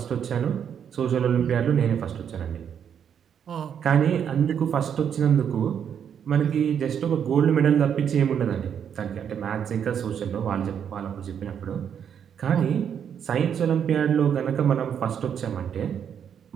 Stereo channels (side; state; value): left; quieter; 8.2 dB